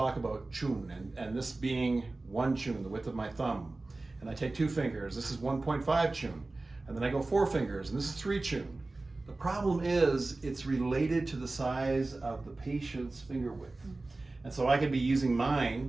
about chun, and this being one chun, the width of my thumb, and I take 2 fingers, this is 1.5 chun, and then I go 4 fingers, and this is 3 chun. The problem is it's related to the size of the patient's finger width. And so I could be using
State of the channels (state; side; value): quieter; left; 3.2 dB